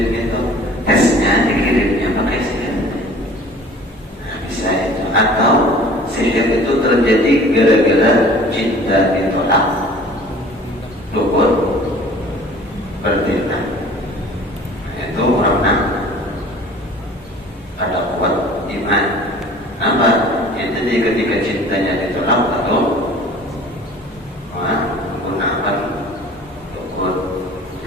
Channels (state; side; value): normal; both; correlation 0.47